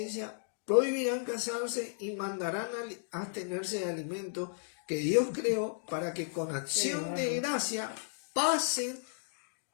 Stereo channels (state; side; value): silent; right; digital silence